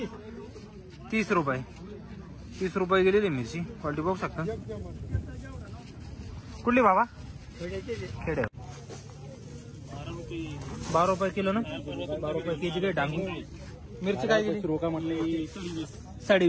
30 रुपये गेलेली मिरची क्वालिटी बघू शकता. कुठली बाबा? खेडे. 12 रुपये किलो ना, 12 रुपये केजी काही डांगू. मिरची काय गेली?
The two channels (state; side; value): identical; both; correlation 1.00